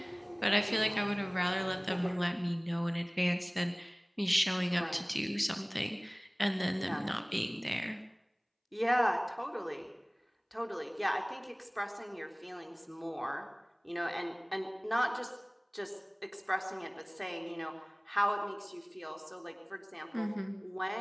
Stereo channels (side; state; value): both; identical; correlation 1.00